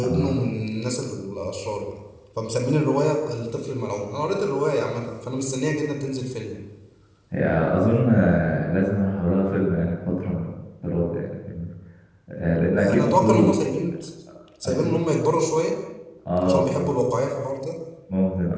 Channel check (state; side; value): identical; both; correlation 1.00